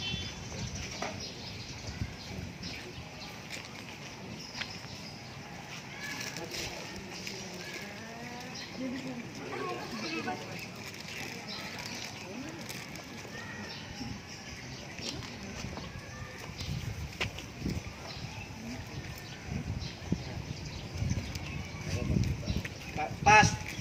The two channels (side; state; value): both; identical; correlation 1.00